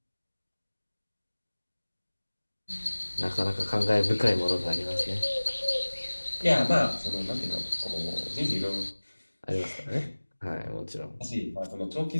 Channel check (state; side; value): inverted; both; correlation -1.00